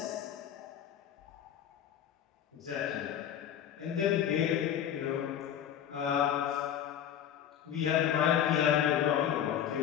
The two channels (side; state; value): right; quieter; 9.8 dB